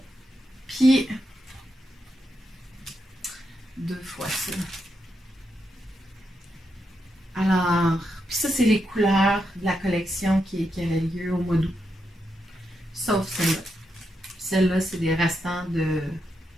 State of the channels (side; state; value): both; normal; correlation 0.84